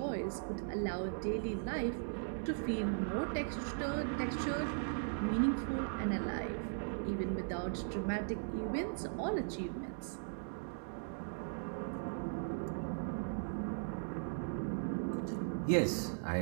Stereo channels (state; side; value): silent; left; digital silence